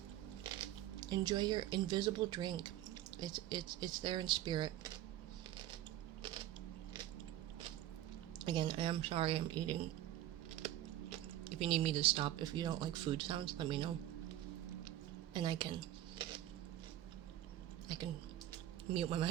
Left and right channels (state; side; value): quieter; left; 13.3 dB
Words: Enjoy your invisible drink. It's there in spirit. Again, I am sorry I'm eating. If you need me to stop, if you don't like food sounds, let me know. And I can mute my